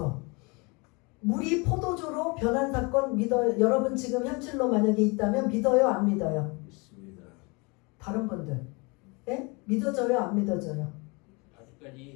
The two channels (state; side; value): quieter; right; 28.8 dB